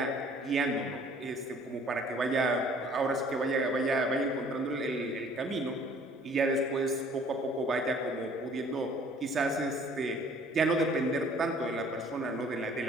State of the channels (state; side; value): normal; both; correlation 0.55